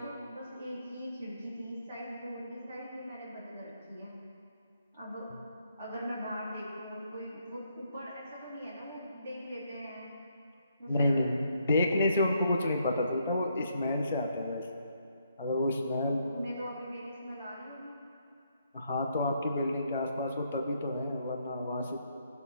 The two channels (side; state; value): both; inverted; correlation -0.74